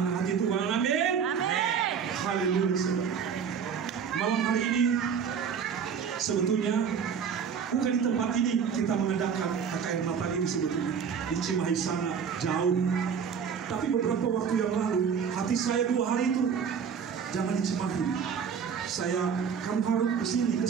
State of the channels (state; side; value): quieter; left; 6.9 dB